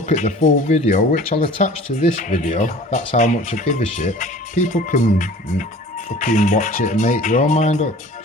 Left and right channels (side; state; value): both; normal; correlation 0.45